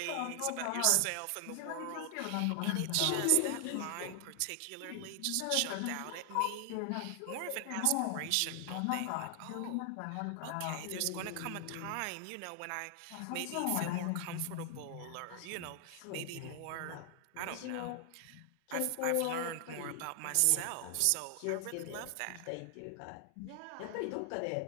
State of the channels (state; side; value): different; both; correlation 0.00